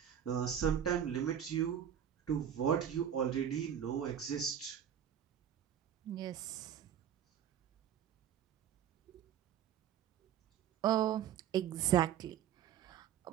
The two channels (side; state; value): left; quieter; 9.5 dB